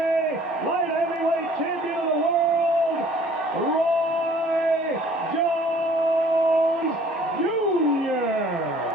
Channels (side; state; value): both; normal; correlation 0.54